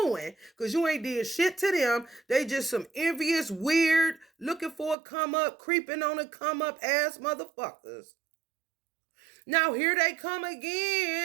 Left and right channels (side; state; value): left; drops out; at 5.0 s